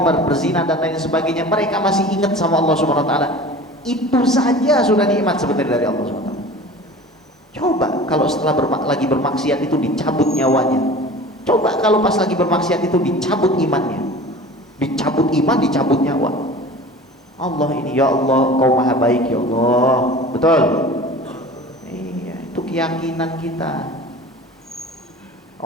berzina dan lain sebagainya, mereka masih ingat sama Allah Subhanahu wa taala. Itu saja sudah nikmat sebenarnya dari Allah Subhanahu wa taala. Coba kalau setelah lagi bermaksiat itu dicabut nyawanya. Coba kalau pas lagi bermaksiat itu dicabut imannya, dicabut iman, dicabut nyawa. Allah ini, ya Allah, Kau maha baik ya Allah. Betul? Iya, itu keyakinan kita.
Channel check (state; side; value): normal; both; correlation 0.40